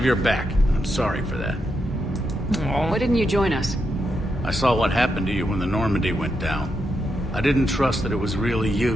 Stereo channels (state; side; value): normal; both; correlation 0.83